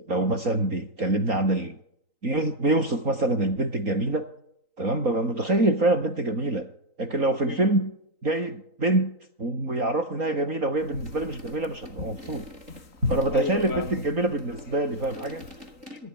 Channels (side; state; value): left; late; 3.9 ms